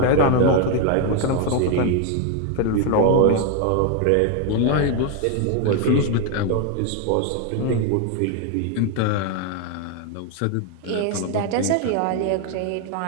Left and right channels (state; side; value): different; both; correlation 0.01